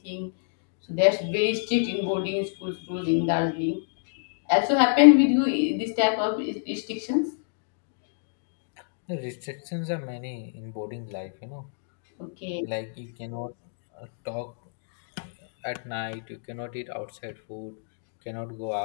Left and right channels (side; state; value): right; silent; digital silence